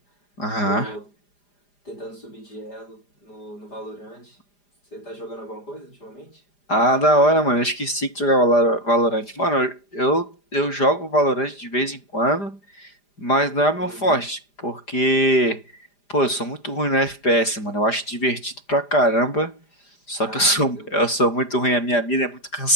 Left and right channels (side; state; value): right; late; 5.0 ms